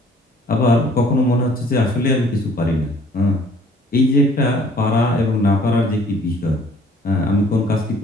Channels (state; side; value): normal; both; correlation 0.56